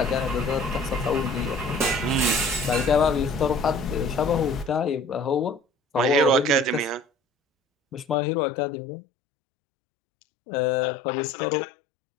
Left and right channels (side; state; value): right; drops out; at 8.2 s